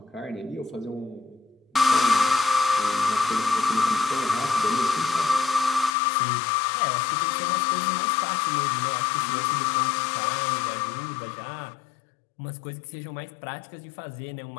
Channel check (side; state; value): right; drops out; at 5.9 s